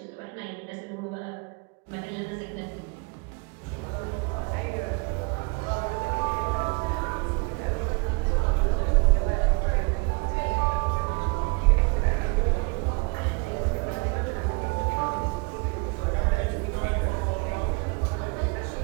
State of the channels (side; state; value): left; quieter; 30.8 dB